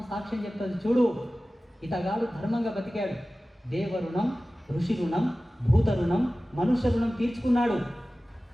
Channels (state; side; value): normal; both; correlation 0.96